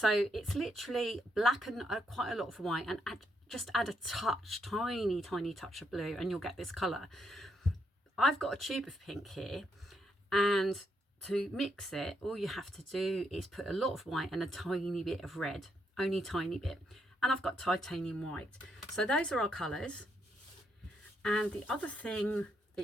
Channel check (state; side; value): normal; both; correlation 0.77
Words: it's literally black and quite a lot of white, and just add a touch, tiny touch of blue, and you'll get this colour. I've got a tube of pink here, and to mix it, all you have to do is put a lot of white and a tiny bit of red, only tiny bit. And I've got titanium white. So those are our colours. And the other thing